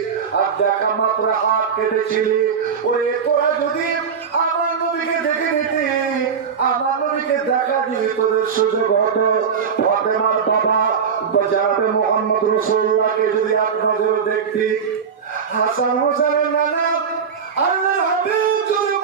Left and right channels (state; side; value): quieter; left; 6.5 dB